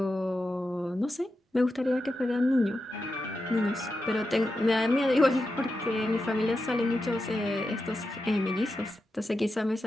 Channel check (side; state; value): both; normal; correlation 0.89